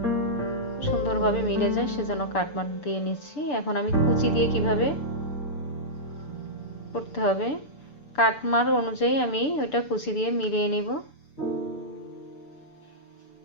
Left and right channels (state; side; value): late; right; 6.9 ms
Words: সুন্দরভাবে মিলে যায় সেজন্য কাট মার্ক দিয়ে নিচ্ছি। এখন আমি কুচি দিয়ে কিভাবে করতে হবে কাট মার্ক অনুযায়ী আমি ওইটা কুচি দিয়ে মিলিয়ে নিব।